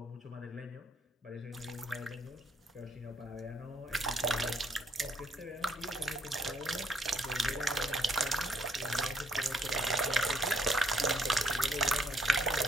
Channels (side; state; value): both; normal; correlation 0.68